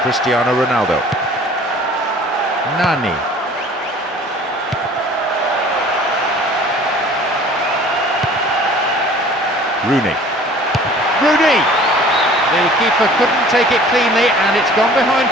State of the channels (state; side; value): normal; both; correlation 0.49